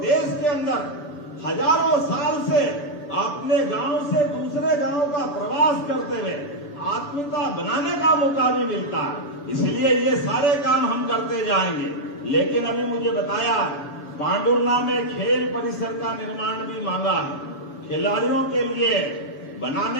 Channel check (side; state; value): right; late; 7.1 ms